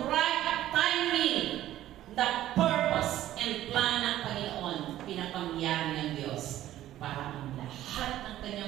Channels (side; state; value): left; quieter; 13.4 dB